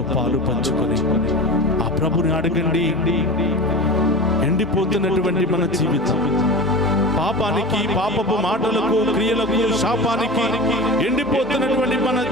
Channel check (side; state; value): both; normal; correlation 0.30